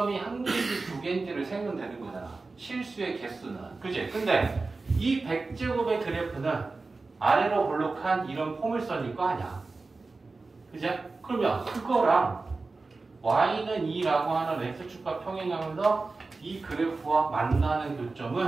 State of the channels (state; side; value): quieter; left; 3.8 dB